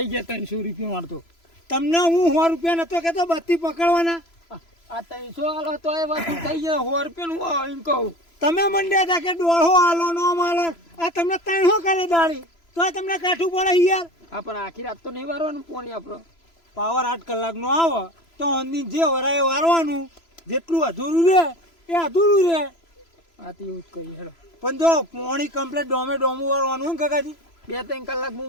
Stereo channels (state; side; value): late; right; 3.0 ms